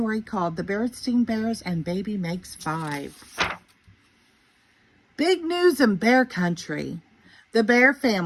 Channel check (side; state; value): both; identical; correlation 1.00